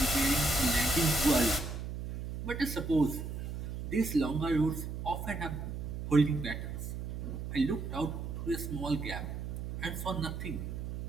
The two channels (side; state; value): right; noise; hum, 6 dB below the sound